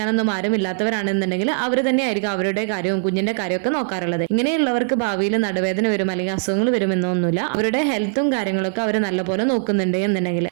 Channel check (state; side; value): silent; left; digital silence